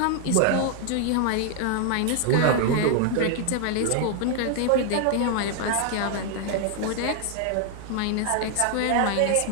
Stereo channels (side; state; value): both; different; correlation 0.00